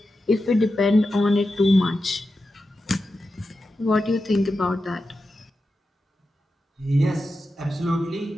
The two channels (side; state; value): both; normal; correlation 0.90